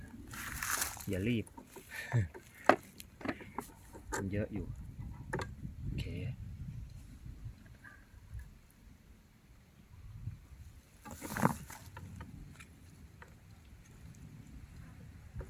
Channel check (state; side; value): identical; both; correlation 1.00